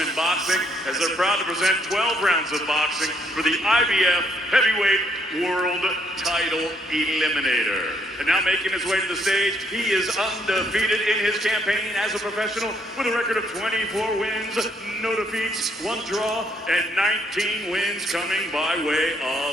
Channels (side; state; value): both; normal; correlation 0.71